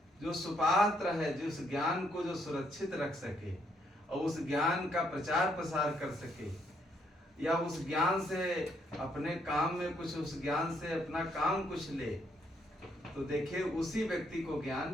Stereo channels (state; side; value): normal; both; correlation 0.73